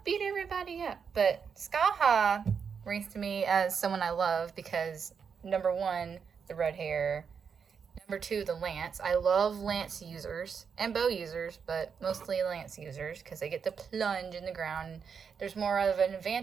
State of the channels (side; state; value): left; quieter; 6.4 dB